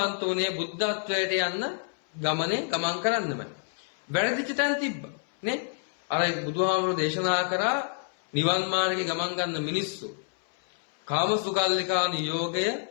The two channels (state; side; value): silent; right; 59 dB below the other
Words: වුණේ බුද්ධත්වයට යන්න ගමන් කරන්නමයි. වැරදිච්ච තැන් තිබ්බා. නේ? අර බුදුහාමුදුරුවෝ දේශනා කරා නිවන් මාර්ගේ ගමන් ගන්න මිනිස්සු කාමසුකල්ලිකා නියෝගය